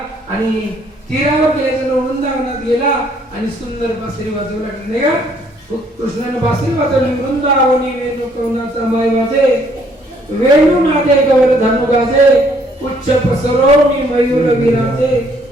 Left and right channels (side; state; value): both; normal; correlation 0.65